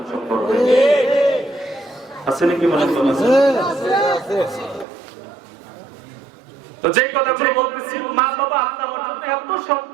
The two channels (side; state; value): left; drops out; at 4.9 s